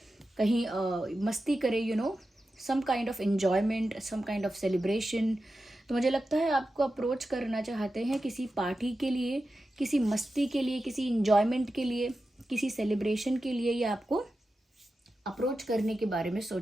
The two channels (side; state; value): both; normal; correlation 0.92